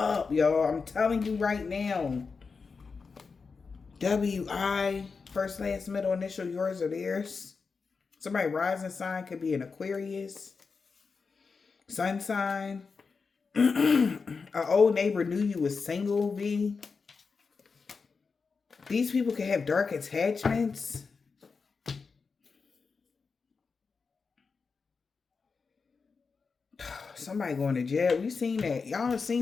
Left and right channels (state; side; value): quieter; right; 4.9 dB